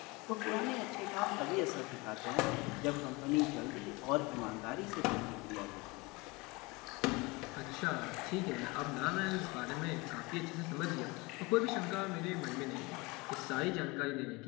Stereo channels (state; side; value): quieter; right; 25.0 dB